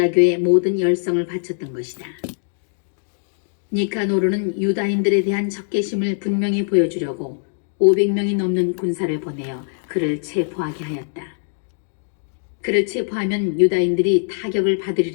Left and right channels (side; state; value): right; silent; digital silence